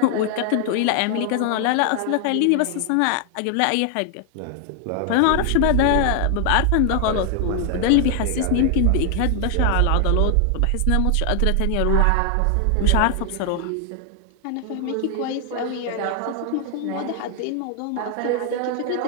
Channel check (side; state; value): both; different; correlation 0.00